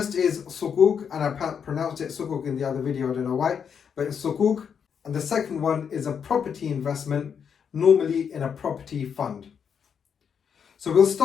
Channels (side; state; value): right; quieter; 7.2 dB